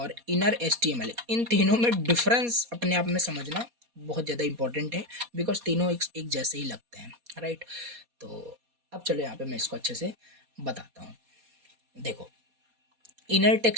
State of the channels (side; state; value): left; late; 4.2 ms